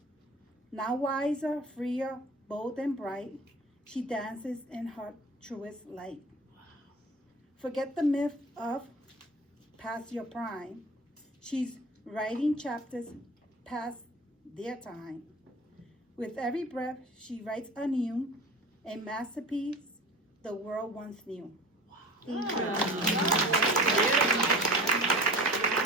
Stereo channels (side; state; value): both; normal; correlation 0.38